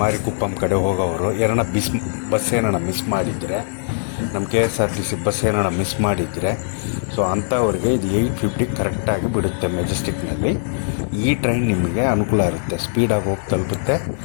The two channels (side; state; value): right; silent; digital silence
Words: ಮಾರಿಗುಪ್ಪಮ್ ಕಡೆ ಹೋಗೋರು ಬಸ್ ಏನಾರ ಮಿಸ್ ಮಾಡಿದರೆ, ನಮ್ಮ KSRTC ಬಸ್ ಏನಾರ ಮಿಸ್ ಮಾಡಿದರೆ, ಸೊ ಅಂಥವ್ರಿಗೆ ಇದು 8:50 ಕರೆಕ್ಟಾಗಿ ಬಿಡುತ್ತೆ ಮೆಜೆಸ್ಟಿಕ್ನಲ್ಲಿ. ಈ ಟ್ರೈನ್ ನಿಮಗೆ ಅನುಕೂಲ ಇರುತ್ತೆ, ಸ್ಪೀಡಾಗಿ ಹೋಗಿ ತಲುಪುತ್ತೆ.